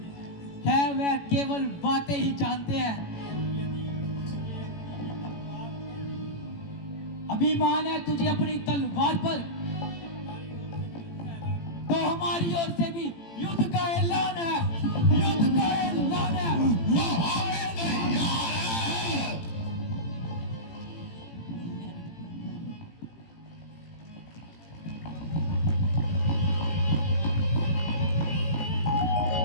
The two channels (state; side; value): late; right; 18 ms